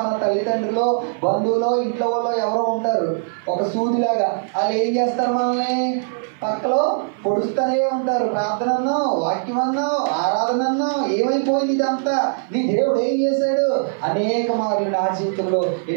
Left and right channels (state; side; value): silent; left; 57 dB below the other